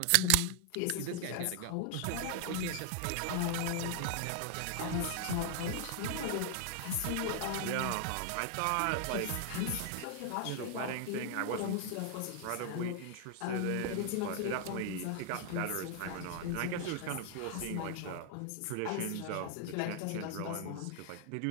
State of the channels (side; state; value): both; different; correlation 0.00